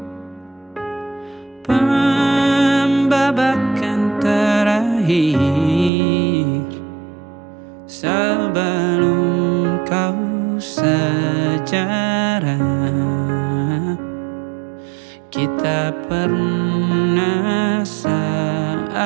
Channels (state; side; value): drops out; left; at 5.9 s